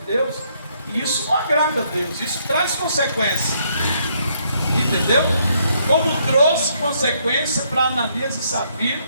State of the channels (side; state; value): both; inverted; correlation -0.71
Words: e isso não agrada a Deus, isso traz consequência, entendeu? Como trouxe consequência para Ananias e Safira,